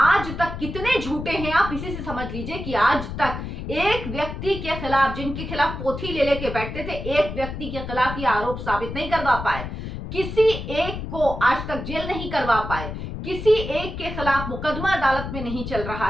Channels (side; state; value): left; noise; rumble, 7 dB below the sound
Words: तक कितने झूठे हैं आप इसी से समझ लीजिए कि आज तक एक व्यक्ति के खिलाफ, जिनके खिलाफ पोथी ले लेके बैठते थे, एक व्यक्ति के खिलाफ ये आरोप साबित नहीं करवा पाए, किसी एक को आज तक जेल नहीं करवा पाए, किसी एक के खिलाफ मुकदमा अदालत में नहीं चल रहा